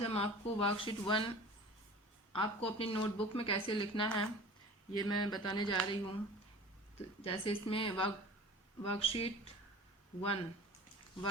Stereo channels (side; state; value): both; normal; correlation 0.41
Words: हम आपको वर्कशीट 1 आपको अपनी नोटबुक में कैसे लिखना है ये मैं बताने जा रही हूँ। तो जैसे इसमें वर्कशीट 1